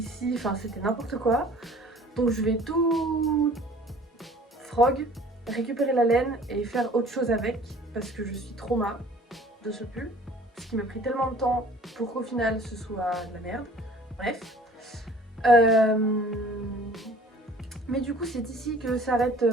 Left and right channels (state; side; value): normal; both; correlation 0.50